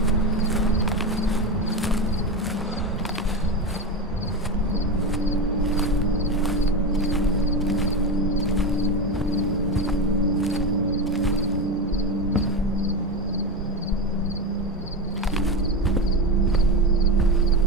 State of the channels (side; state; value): both; normal; correlation 0.18